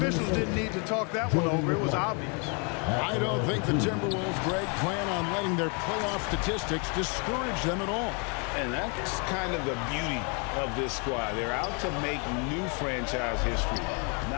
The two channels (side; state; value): right; quieter; 35.3 dB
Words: didn't need to talk that one over. It was obvious. I don't think the Timberwolves, Greg, plan on letting their playoff statistics discourage them at all. And that's kind of the beauty of this squad. They're out to make new franchise history,